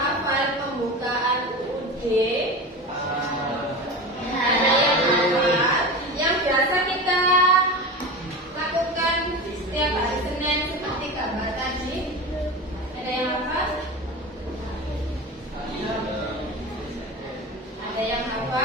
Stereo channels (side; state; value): both; normal; correlation 0.28